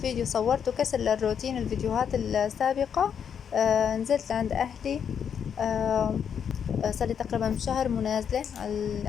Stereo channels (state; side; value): quieter; right; 7.7 dB